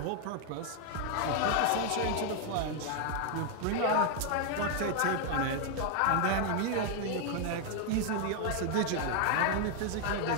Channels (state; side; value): different; both; correlation 0.00